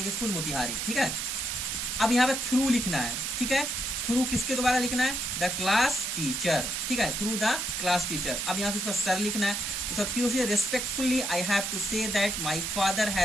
स्कूल मोतिहारी, ठीक है। अब यहाँ पे थ्रू लिखना है, ठीक है। थ्रू किसके द्वारा लिखना है, द क्लास टीचर, ठीक है, थ्रू द क्लास टीचर। अब यहाँ पे उसका सर लिखना है, उसके बाद फिर उसे respectfully I have to say that my father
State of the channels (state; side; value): noise; right; hiss, 2 dB below the sound